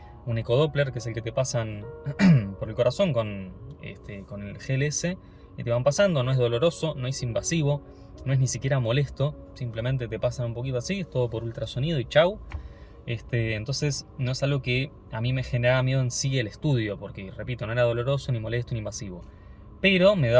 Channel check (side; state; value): both; identical; correlation 1.00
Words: un ecodoppler, que es el que te pasan por el corazón con el GLS, y te van pasando. No es doloroso, no es invasivo, no es ni siquiera molesto, simplemente te pasan un poquito así, es todo por ultrasonido y chau. Entonces no es algo que a mí me generaba miedo en sí el estudio, porque repito, no era doloroso, ni molesto, ni invasivo. Pero me